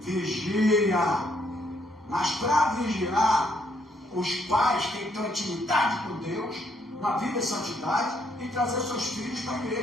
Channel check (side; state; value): both; normal; correlation 0.71